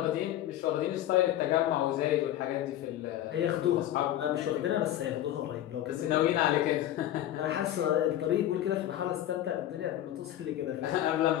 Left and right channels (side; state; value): right; quieter; 12.7 dB